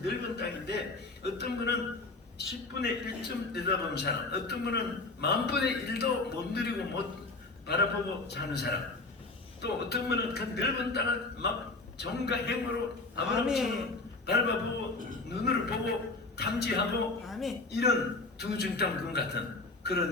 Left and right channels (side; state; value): right; quieter; 3.4 dB